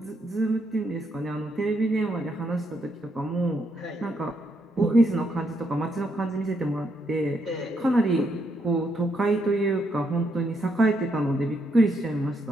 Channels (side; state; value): both; normal; correlation 0.76